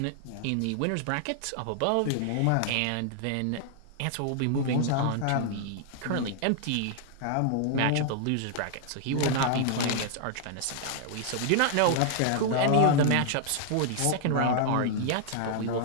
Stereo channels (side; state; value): both; different; correlation 0.00